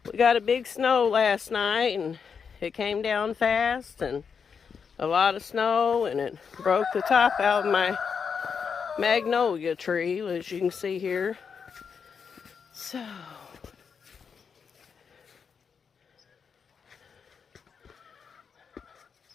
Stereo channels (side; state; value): right; quieter; 6.3 dB